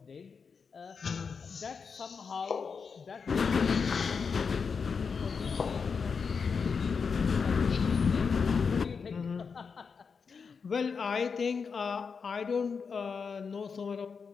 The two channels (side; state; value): right; quieter; 5.6 dB